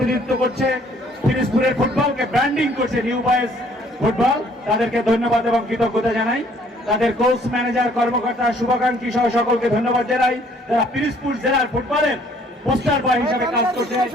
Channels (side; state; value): both; normal; correlation 0.61